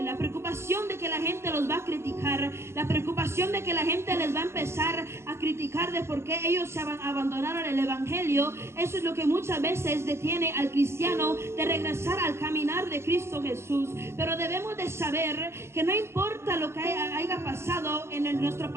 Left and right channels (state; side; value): late; left; 0.13 ms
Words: la preocupación de que la gente los va a criticar, la preocupación de que la gente les va a empezar a criticar de por qué ellos se abandonaron el evangelio. Eso es lo que muchas veces detiene al cristiano de regresar al caminar de Cristo Jesús. Pero debemos de saber que no importa lo que haya pasado en nuestro